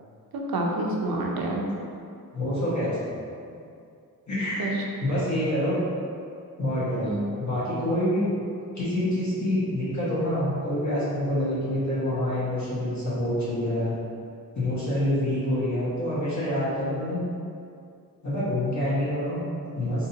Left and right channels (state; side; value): normal; both; correlation 0.44